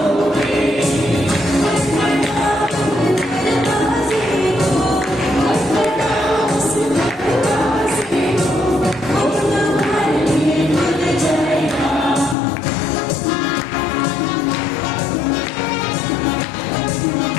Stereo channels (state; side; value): drops out; right; at 12.4 s